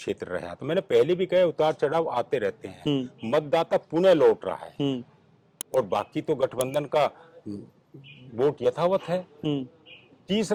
रहा। तो मैंने पहले भी कहा उतार चढ़ाव आते रहते हैं, मतदाता पुनः लौट रहा है और बाकी तो गठबंधन का वोट यथावत है।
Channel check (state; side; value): identical; both; correlation 1.00